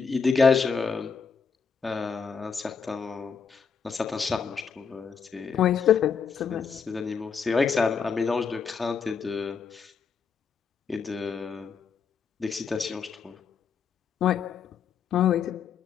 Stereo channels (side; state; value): right; quieter; 6.0 dB